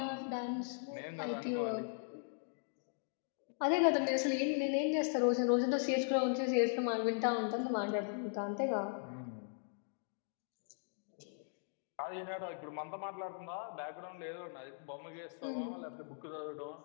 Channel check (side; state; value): right; silent; digital silence